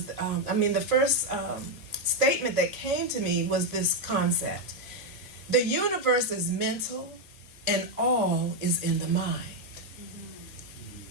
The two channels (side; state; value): both; normal; correlation 0.03